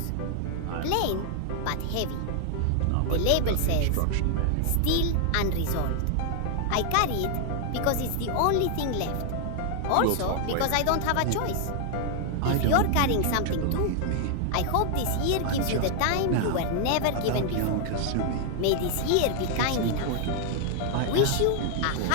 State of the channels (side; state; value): both; different; correlation 0.00